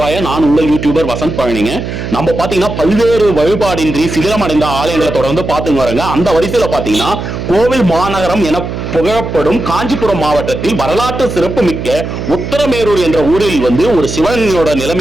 நான் உங்கள் யூடியூபர் வசந்த் பழனிங்க. நம்ம பாத்தீங்கன்னா பல்வேறு வழிபாடின்றி சிதிலமடைந்த ஆலயங்களை தொடர்ந்து பார்த்துங்க வரங்க. அந்த வரிசையில பாத்தீங்கன்னா கோவில் மாநகரம் என புகழப்படும் காஞ்சிபுரம் மாவட்டத்தில் வரலாற்று சிறப்பு மிக்க உத்தரமேரூர் என்ற ஊரில் ஒரு சிவனோட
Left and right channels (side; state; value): right; noise; hum, 6 dB below the sound